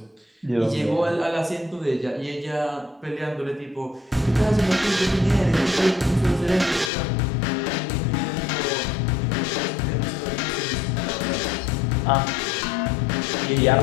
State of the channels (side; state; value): right; drops out; at 6.9 s